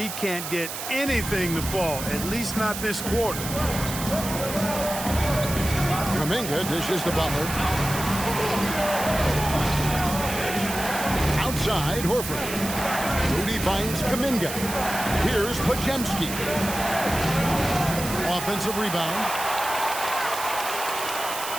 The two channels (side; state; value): right; noise; hiss, 7 dB below the sound